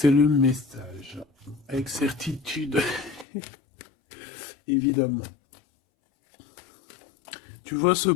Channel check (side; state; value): right; drops out; at 3.2 s